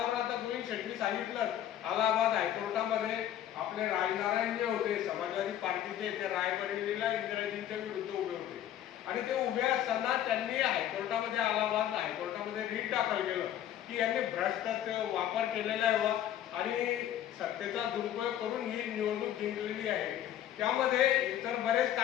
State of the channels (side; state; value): right; quieter; 11.3 dB